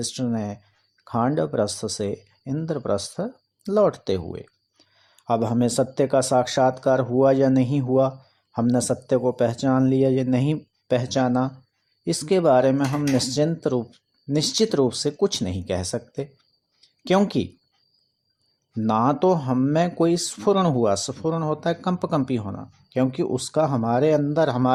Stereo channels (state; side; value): identical; both; correlation 1.00